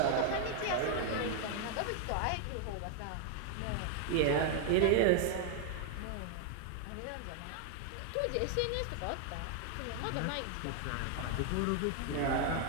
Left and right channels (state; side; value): different; both; correlation 0.00